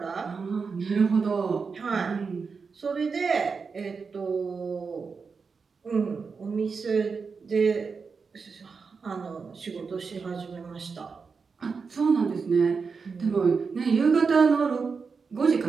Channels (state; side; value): quieter; left; 5.1 dB